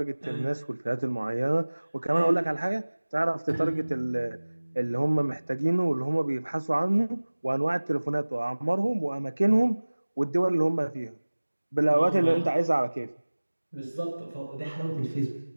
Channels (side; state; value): both; inverted; correlation -1.00